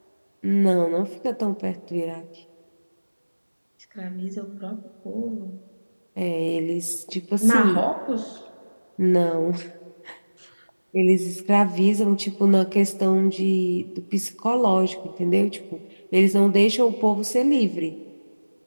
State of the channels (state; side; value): inverted; both; correlation -1.00